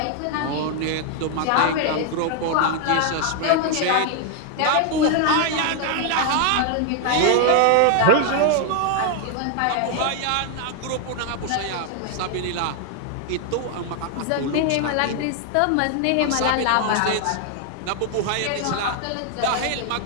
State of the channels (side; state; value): both; different; correlation 0.00